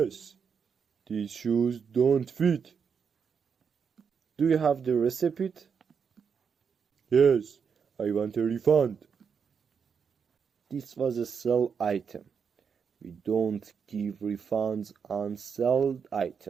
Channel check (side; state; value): left; quieter; 6.4 dB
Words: these shoes don't fit. Do you have the receipt? Yes, I want a refund. This was a sell item. We don't give refunds on sold